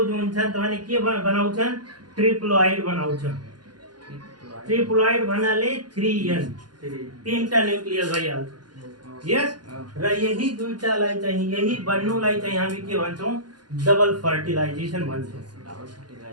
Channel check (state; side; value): late; left; 0.70 ms